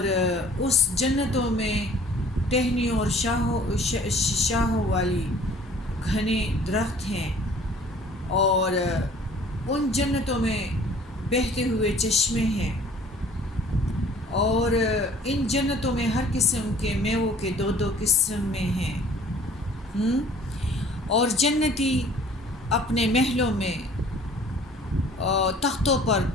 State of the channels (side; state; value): both; normal; correlation 0.52